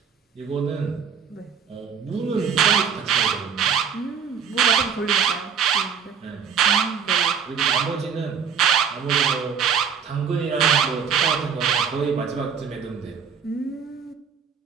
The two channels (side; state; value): left; quieter; 7.0 dB